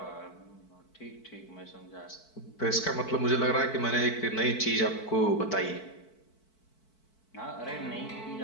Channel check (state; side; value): late; right; 4.5 ms